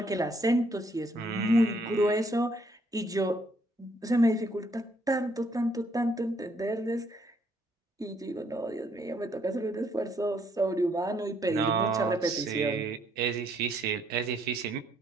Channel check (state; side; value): normal; both; correlation 0.69